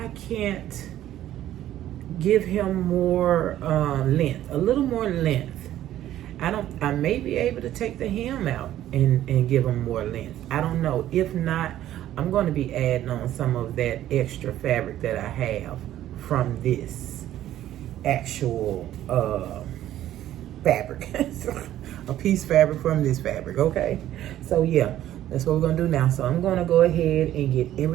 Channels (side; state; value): left; quieter; 12.8 dB